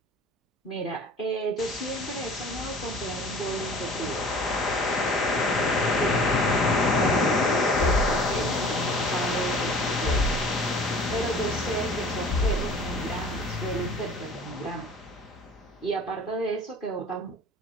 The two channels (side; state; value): both; normal; correlation 0.45